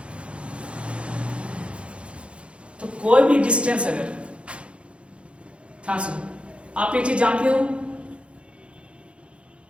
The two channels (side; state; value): left; late; 0.059 ms